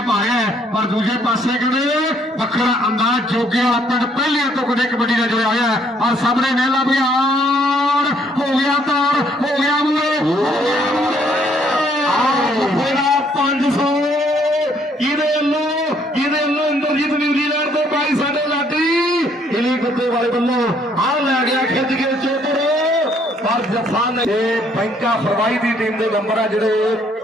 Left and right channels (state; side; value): normal; both; correlation 0.66